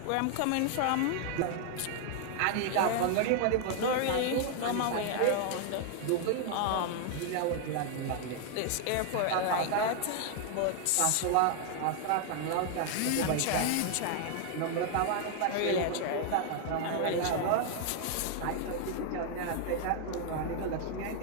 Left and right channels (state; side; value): different; both; correlation 0.00